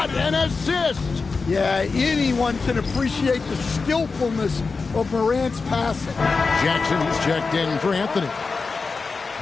an assist! Yeah, anyone can appreciate the skillfulness of Morant's passing. Jackson is checked in for Anthony.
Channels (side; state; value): right; quieter; 4.4 dB